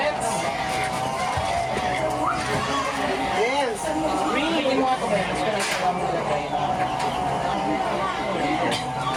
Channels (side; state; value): both; identical; correlation 1.00